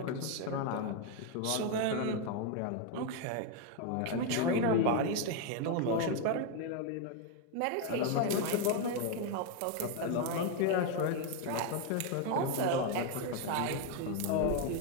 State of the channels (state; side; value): different; both; correlation 0.01